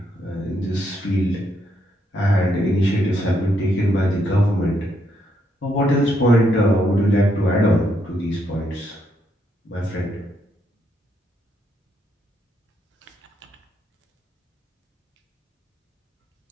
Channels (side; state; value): both; normal; correlation 0.76